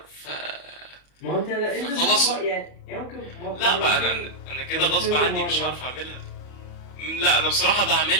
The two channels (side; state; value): right; late; 40 ms